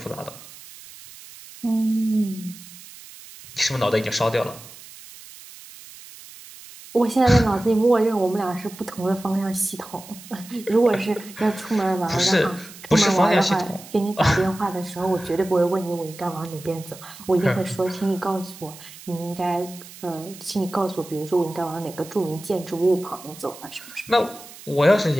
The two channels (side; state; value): right; noise; hiss, 18 dB below the sound